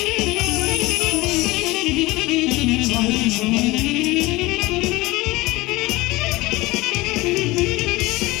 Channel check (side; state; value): right; quieter; 20.9 dB